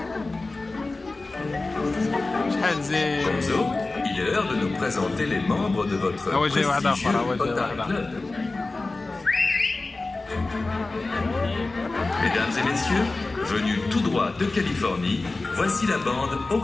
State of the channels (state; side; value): quieter; right; 3.3 dB